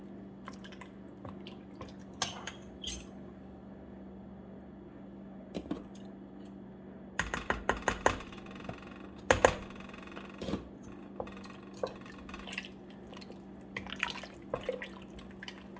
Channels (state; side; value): identical; both; correlation 1.00